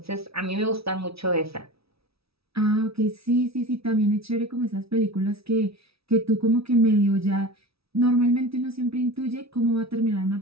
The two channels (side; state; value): left; late; 0.76 ms